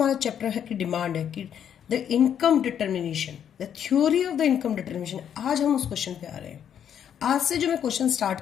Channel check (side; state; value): right; quieter; 9.0 dB